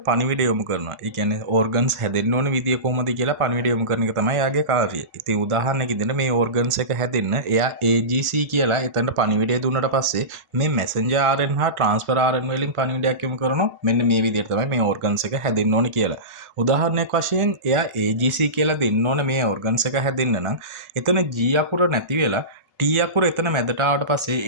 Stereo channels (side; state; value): left; late; 1.4 ms